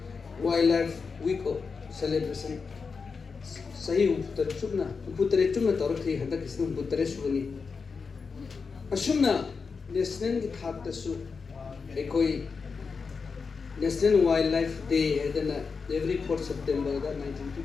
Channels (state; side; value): quieter; right; 5.1 dB